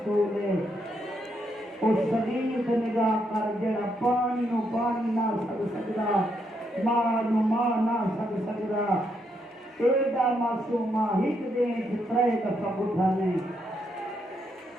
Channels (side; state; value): both; normal; correlation 0.78